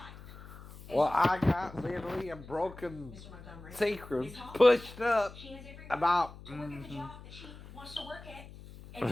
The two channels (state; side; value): noise; left; hum, 16 dB below the sound